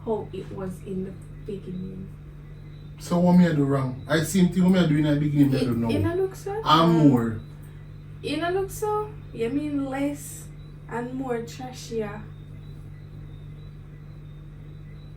how it was in the beginning. So what me I do wrong? I same thing what me I do in the beginning, I don't know. In a look so? I'm more. In a look so? You mean less and more trashier?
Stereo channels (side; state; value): both; identical; correlation 1.00